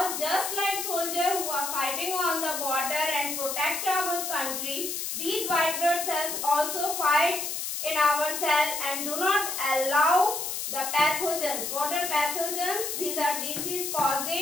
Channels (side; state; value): left; noise; hiss, 3 dB below the sound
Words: just like soldiers who are fighting on the border and protect our country, these white blood cells also fight in our cell and do not allow the pathogens. What are pathogens? These are disease